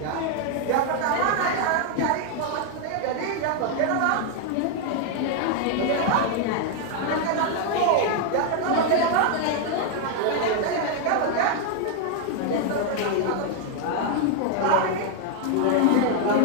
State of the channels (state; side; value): different; both; correlation 0.00